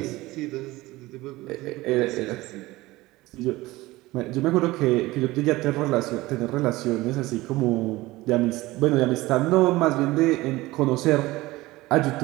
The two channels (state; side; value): quieter; left; 19.3 dB